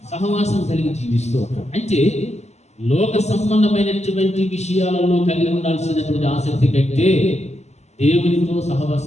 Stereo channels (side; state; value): right; late; 0.32 ms